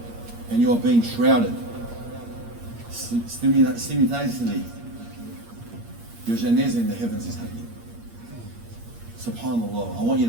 and you are being shrouded, simultaneously your janazah in the heavens is happening. SubhanAllah, I want you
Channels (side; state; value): left; late; 8.6 ms